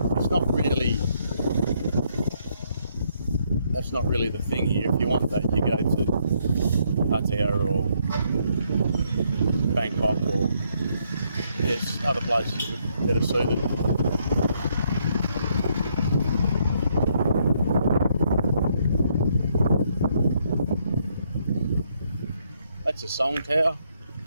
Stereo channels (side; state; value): both; inverted; correlation -0.72